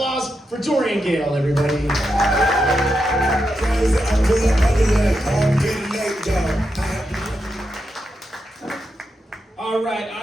for Dorian Gayle, everybody. All right,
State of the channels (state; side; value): normal; both; correlation 0.86